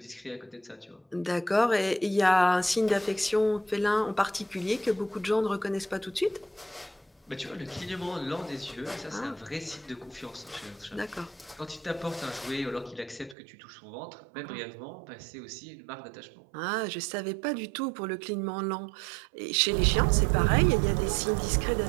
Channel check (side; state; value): left; drops out; at 13.4 s